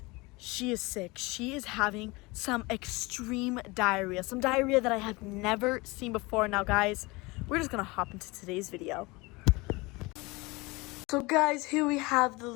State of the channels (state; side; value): quieter; right; 24.1 dB